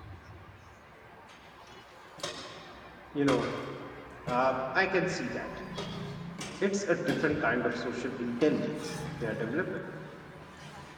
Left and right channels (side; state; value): both; identical; correlation 1.00